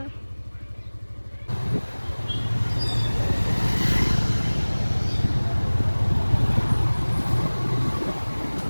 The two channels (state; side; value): inverted; both; correlation -1.00